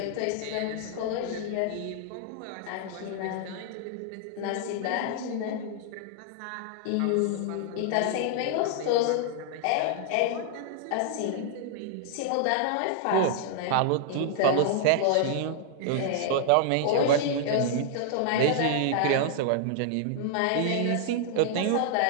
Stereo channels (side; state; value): both; different; correlation 0.00